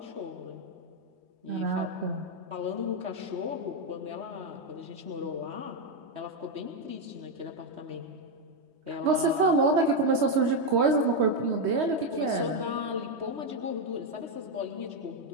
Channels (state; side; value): late; left; 3.2 ms